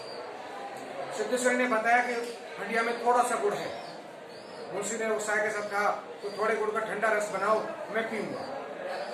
सिद्धेश्वरी ने बताया कि हंडिया में थोड़ा सा गुड़ है। मुंशी ने उत्साह के साथ कहा, तो थोड़े गुड़ का ठंडा रस बनाओ, मैं पीऊंगा।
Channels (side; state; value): both; identical; correlation 1.00